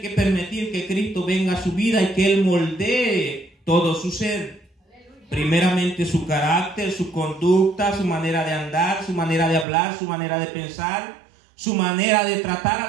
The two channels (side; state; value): left; drops out; at 9.7 s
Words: que permitir que Cristo venga a su vida y que Él moldee todo su ser. Primeramente su carácter, su conducta, su manera de andar, su manera de hablar, su manera de pensar, su manera de tratar a